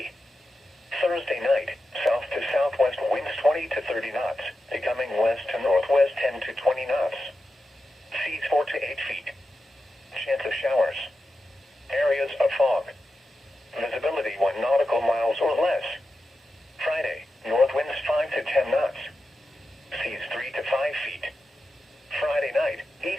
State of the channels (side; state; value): both; normal; correlation 0.90